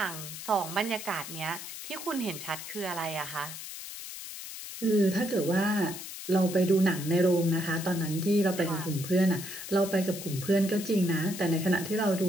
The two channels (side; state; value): left; noise; hiss, 10 dB below the sound